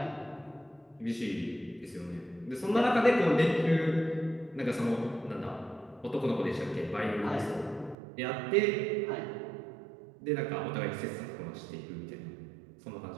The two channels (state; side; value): drops out; left; at 8.0 s